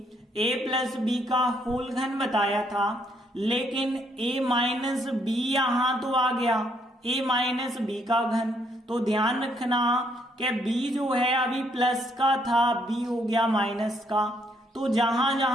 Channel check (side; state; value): both; normal; correlation 0.71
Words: a प्लस बी का होल घन बताया था, लेकिन a माइनस बी यहाँ तो आ गया, a माइनस बी का घन। तो ध्यान रखना कि b जो है अभी प्लस का था, b हो गया माइनस का, तो जहां